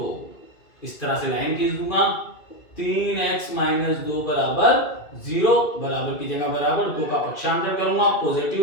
इस तरह से लाइन खींच दूंगा, 3x माइनस 2 बराबर 0, बराबर की जगह बराबर, 2 का पक्षांतर करूंगा पॉजिटिव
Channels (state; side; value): late; right; 2.4 ms